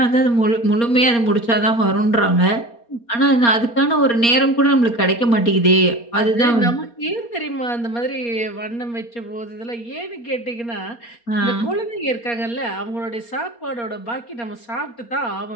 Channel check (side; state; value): right; late; 4.3 ms